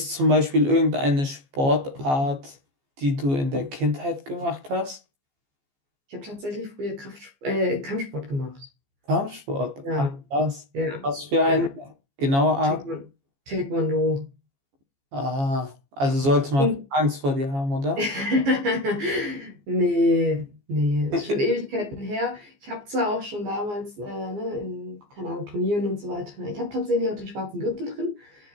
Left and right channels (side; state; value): left; late; 15 ms